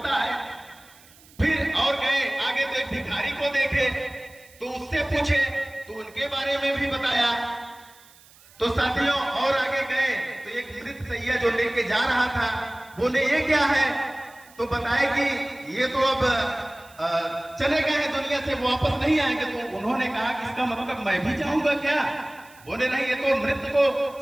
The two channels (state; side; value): noise; right; hiss, 25 dB below the sound